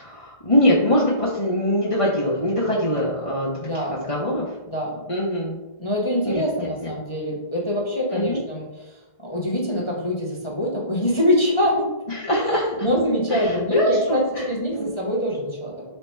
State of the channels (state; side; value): late; right; 1.4 ms